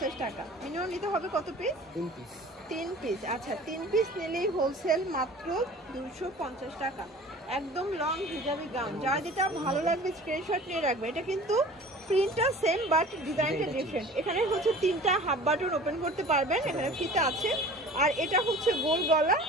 টাকা। মিনিমাম নিতে হবে কত পিস? 3 পিস। আচ্ছা, 3 পিস নিলেই হোলসেল মাত্র 250 টাকা। একদম লং হিজাবি গাউন, যার যেটা ভালো লাগবে স্ক্রিনশট নিয়ে রাখবে। এটা কিন্তু প্রিন্টটা সেম বাট ডিজাইনটা ডিফারেন্ট। এখানে হচ্ছে 3টা হাফ বাটন ওপেন করতে পারবেন, এখানে ফিতা আছে, আর এটা হচ্ছে গোল গলা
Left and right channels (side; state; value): both; normal; correlation 0.43